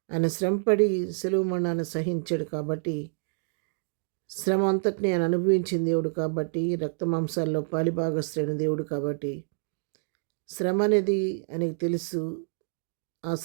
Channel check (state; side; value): silent; left; digital silence